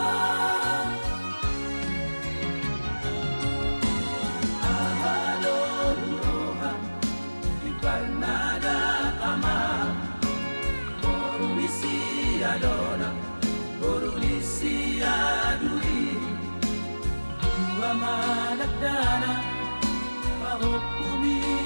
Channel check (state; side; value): inverted; both; correlation -1.00